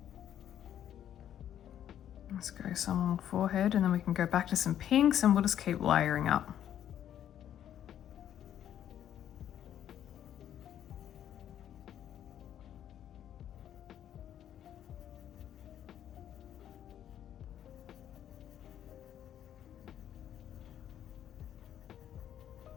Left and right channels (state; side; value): quieter; right; 10.5 dB